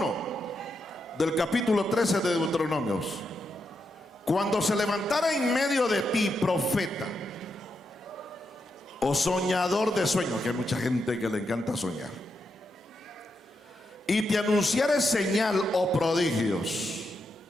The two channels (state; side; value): normal; both; correlation 0.84